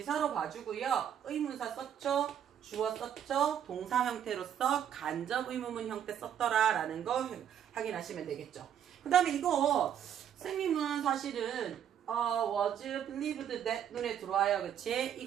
봐주고요. 의문사 썼죠? 주어 썼죠? 동사 형태로서 간접 의문문 형태 썼더라 라는 거 확인하시면 되겠죠. 그 다음에 이거 선생님은 사실은 was believed that 눈에 들어와요. 그치?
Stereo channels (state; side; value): quieter; left; 9.4 dB